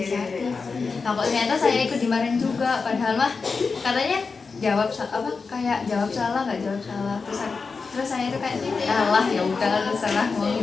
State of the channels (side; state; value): right; quieter; 4.7 dB